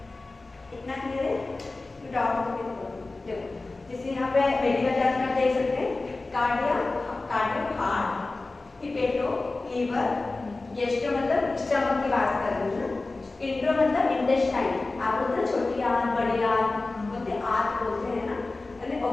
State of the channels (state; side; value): quieter; right; 3.3 dB